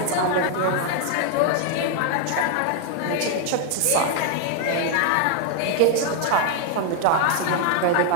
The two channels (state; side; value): different; both; correlation 0.00